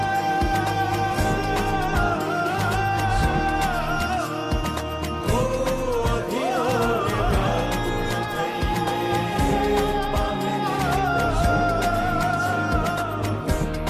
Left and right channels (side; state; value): both; identical; correlation 1.00